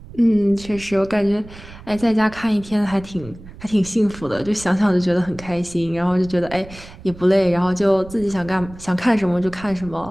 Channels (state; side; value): noise; right; rumble, 17 dB below the sound